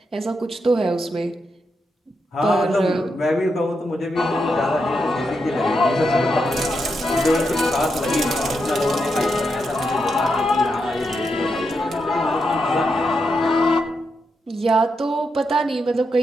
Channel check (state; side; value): normal; both; correlation 0.84